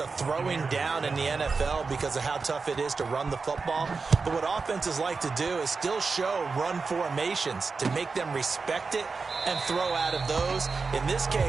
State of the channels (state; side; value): quieter; left; 4.5 dB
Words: throwing down in the NFL because of how tough it is to run the football. But what offenses like to do is still show run formations to make them respect it and throw out of those. In this